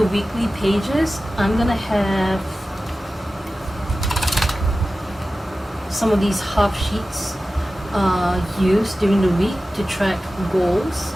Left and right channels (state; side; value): normal; both; correlation 0.95